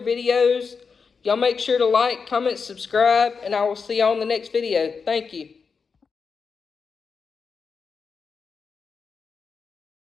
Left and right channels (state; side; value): quieter; right; 5.4 dB